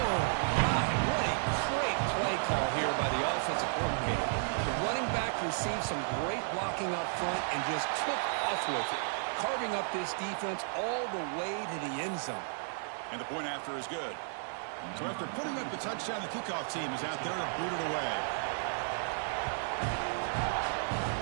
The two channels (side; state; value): left; silent; 56 dB below the other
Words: my. What a great play call here by the offensive coordinator. The running back received some great blocking up front and just took off with it, carving up this defense all the way to the end zone. And the point after is good. So after putting up the touchdown, the kickoff team is out there to boot it away.